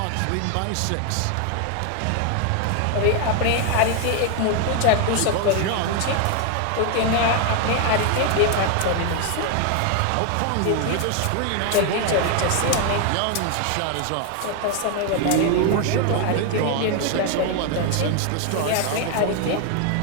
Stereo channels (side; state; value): both; different; correlation 0.01